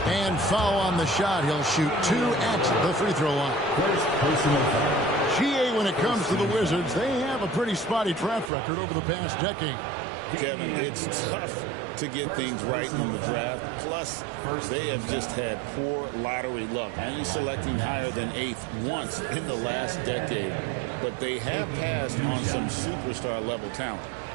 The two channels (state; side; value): drops out; left; at 8.5 s